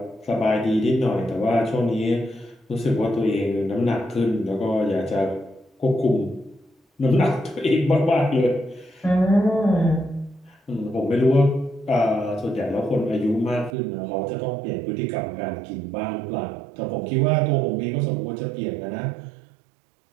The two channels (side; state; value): left; drops out; at 13.8 s